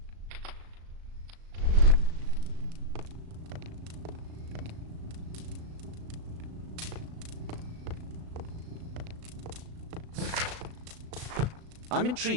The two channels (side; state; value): left; late; 36 ms